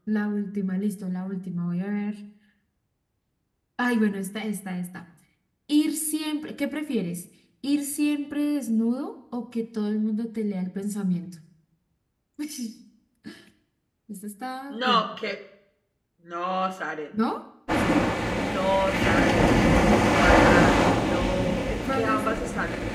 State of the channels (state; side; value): identical; both; correlation 1.00